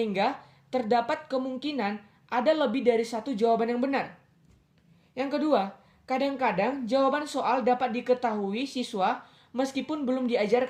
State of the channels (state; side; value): identical; both; correlation 1.00